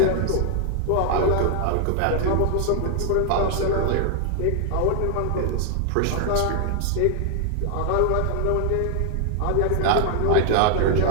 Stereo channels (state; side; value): different; both; correlation 0.00